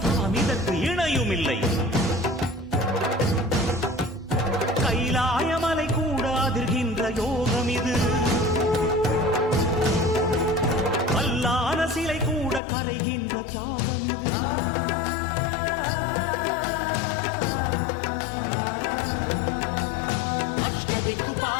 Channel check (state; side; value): drops out; right; at 12.6 s